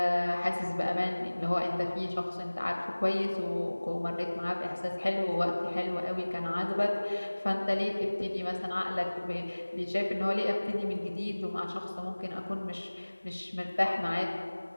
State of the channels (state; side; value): inverted; both; correlation -1.00